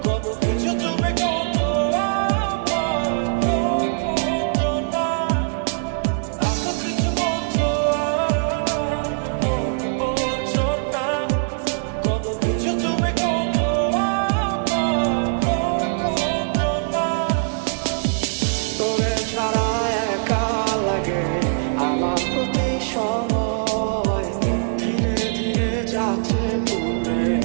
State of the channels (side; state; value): left; silent; 64 dB below the other